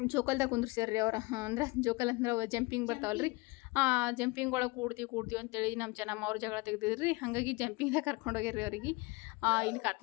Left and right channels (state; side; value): quieter; right; 24.4 dB